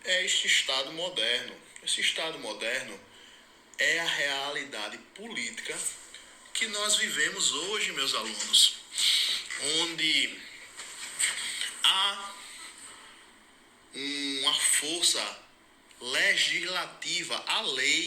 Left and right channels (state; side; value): identical; both; correlation 1.00